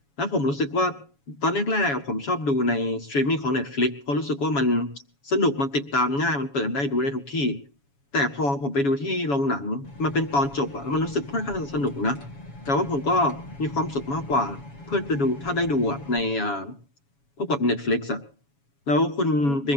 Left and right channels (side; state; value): right; late; 7.1 ms